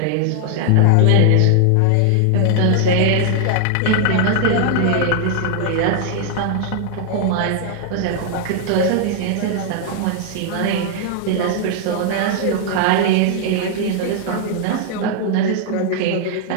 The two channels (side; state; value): both; different; correlation 0.00